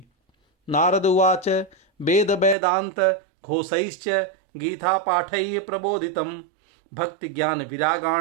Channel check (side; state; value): left; drops out; at 2.6 s